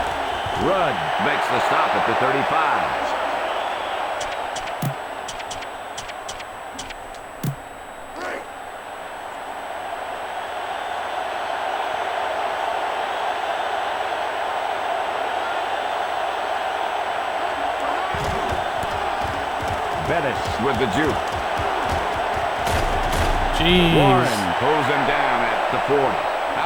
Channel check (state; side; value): identical; both; correlation 1.00